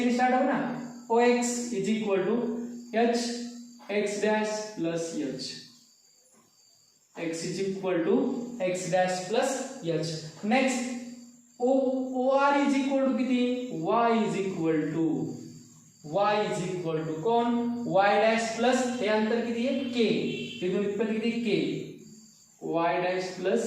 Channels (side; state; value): both; identical; correlation 1.00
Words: स्टार्ट हो ना, O X is equal to H X dash plus H, X is equal to X dash plus H. Next O R is equal to किती, Y is equal to, Y is equal to कोण, Y dash plus हे अंतर किती आहे K, तिथून इथपर्यंत किती K, Y dash plus